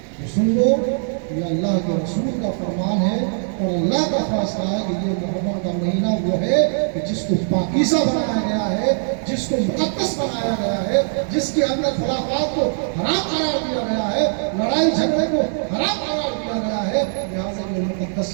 تو سن لو یہ اللہ کے رسول کا فرمان ہے اور اللہ کا فیصلہ ہے کہ یہ محرم کا مہینہ وہ ہے کہ جس کو پاکیزہ بنایا گیا ہے، جس کو مقدس بنایا گیا ہے، جس کے اندر خرافات کو حرام قرار دیا گیا ہے، لڑائی جھگڑے کو حرام قرار دیا گیا ہے. لہٰذا یہ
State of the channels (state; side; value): silent; left; digital silence